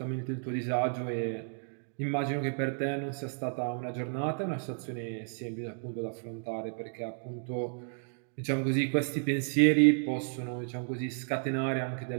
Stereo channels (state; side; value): silent; left; 56 dB below the other